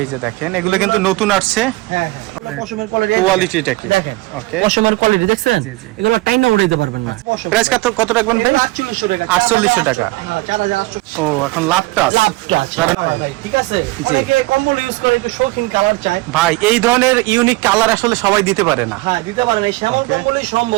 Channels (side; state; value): left; quieter; 20.9 dB